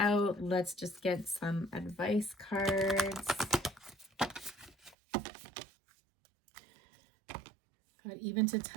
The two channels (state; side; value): drops out; left; at 5.0 s